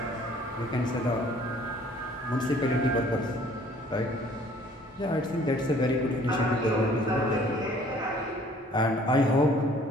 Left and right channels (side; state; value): both; normal; correlation 0.56